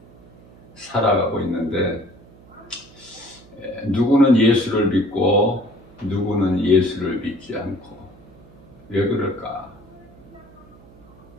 살아가고 있는데 누구는 예수를 믿고 누구는 예수를 믿지 않고, 왜 그럴까?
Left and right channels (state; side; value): noise; right; hum, 24 dB below the sound